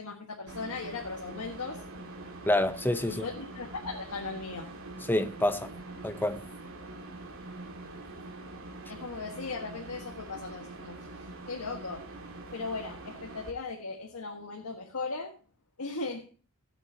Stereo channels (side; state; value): both; normal; correlation 0.40